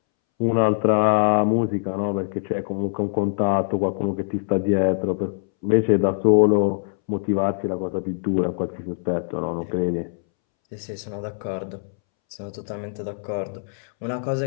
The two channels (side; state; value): right; silent; 63 dB below the other